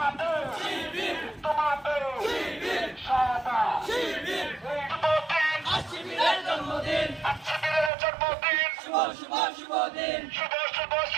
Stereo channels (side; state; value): left; drops out; at 7.9 s